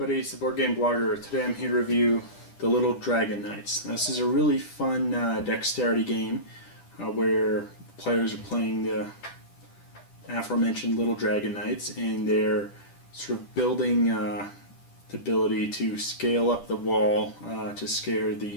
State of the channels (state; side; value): late; right; 10 ms